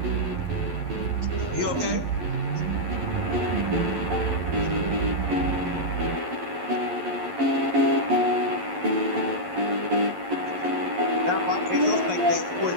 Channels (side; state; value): left; late; 11 ms